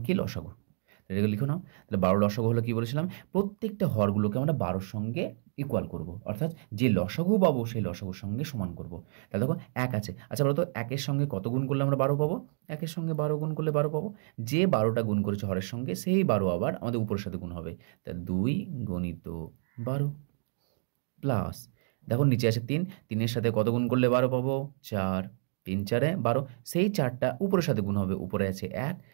কি? লসাগু। এটাকে লিখো নাও। তাহলে 12 লসাগু হলো কি বলেছিলাম? প্রত্যেকটা হরগুলোকে আমরা 12 র সঙ্গে ইকুয়াল করব। অর্থাৎ যে লসাগু পাবো সেই লসাগুর সঙ্গে সমান করব। তাহলে দেখো 1 আছে। আচ্ছা বলো তো 1 এর সঙ্গে কত গুণ করলে আমরা 12 পাবো? 1 এর সঙ্গে 12 গুণ করলে 12 পাবো। যে 12টা গুণ করেছে হরের সঙ্গে সেই 12 আবার আমাদের উপরের সাথে গুণ হবে। তাহলে 2 গণিত 12 প্লাস দেখো নিচে আছে 3, 3 এর সাথে কত গুণ করলে 12 পাবো? 4, 3 4 12। সেই 4টা উপরের সাথে গুণ হবে। উপরে আছে 1,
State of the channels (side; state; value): left; silent; digital silence